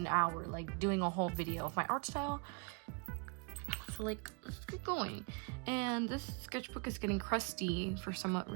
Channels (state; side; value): quieter; left; 34.4 dB